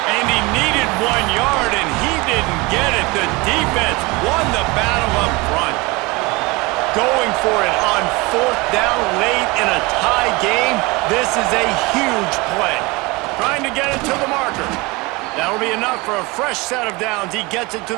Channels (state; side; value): quieter; left; 24.5 dB